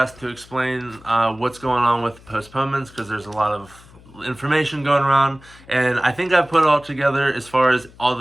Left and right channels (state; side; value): noise; left; hum, 24 dB below the sound